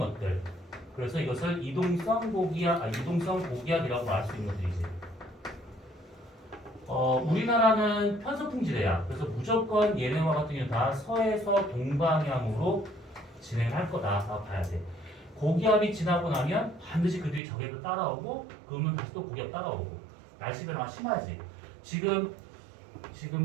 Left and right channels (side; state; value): left; drops out; at 17.4 s